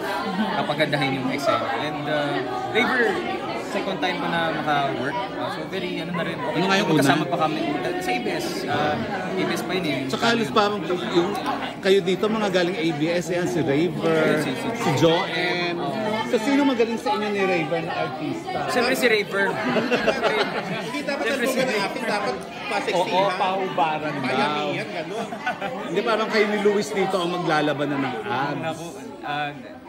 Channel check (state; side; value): identical; both; correlation 1.00